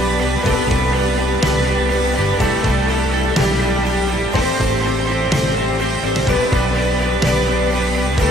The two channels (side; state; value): both; normal; correlation 0.66